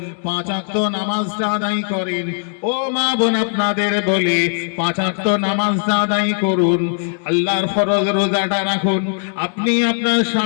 5 ওয়াক্ত নামাজটা আদায় করেন। ও মা বোন, আপনাদের বলে 5 ওয়াক্ত নামাজটা আদায় করুন, আল্লাহর ফরজ রোজাটা রাখুন, আপনি আপনার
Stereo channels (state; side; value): silent; right; 67 dB below the other